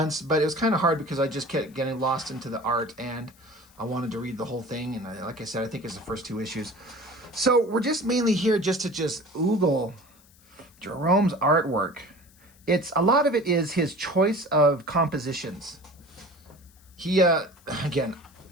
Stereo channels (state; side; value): noise; left; hiss, 28 dB below the sound